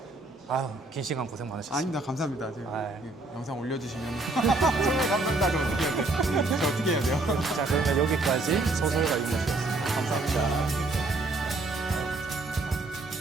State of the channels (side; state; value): left; quieter; 3.1 dB